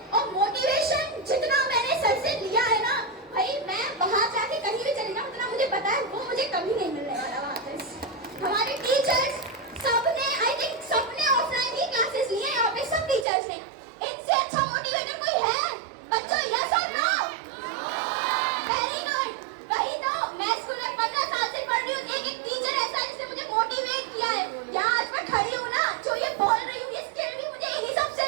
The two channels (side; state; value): left; drops out; at 13.2 s